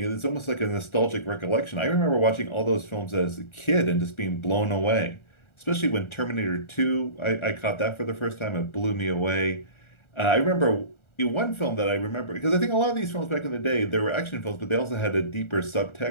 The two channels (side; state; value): right; late; 1.4 ms